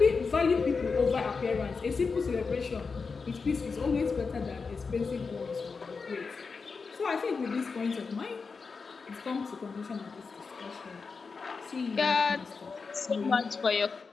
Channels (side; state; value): right; quieter; 4.8 dB